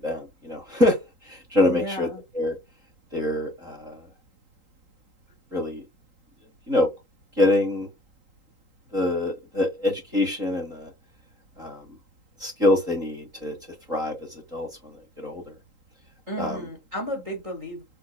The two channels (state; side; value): late; left; 3.8 ms